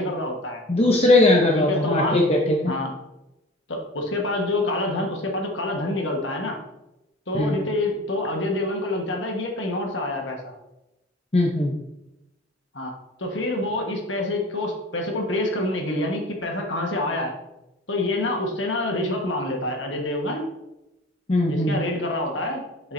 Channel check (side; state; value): both; normal; correlation 0.41